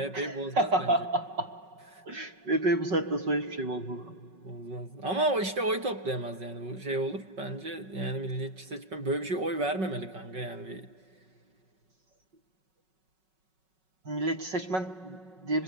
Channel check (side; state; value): left; late; 5.4 ms